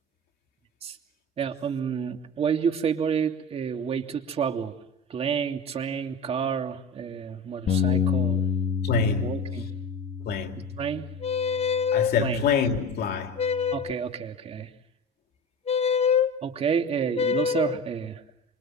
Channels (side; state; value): both; normal; correlation 0.30